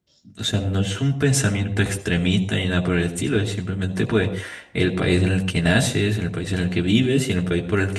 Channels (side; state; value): both; identical; correlation 1.00